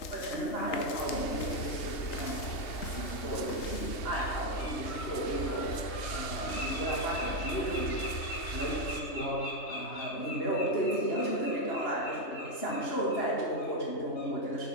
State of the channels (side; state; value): right; late; 3.2 ms